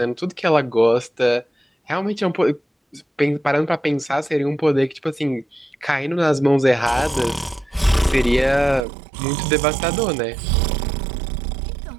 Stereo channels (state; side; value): drops out; left; at 8.8 s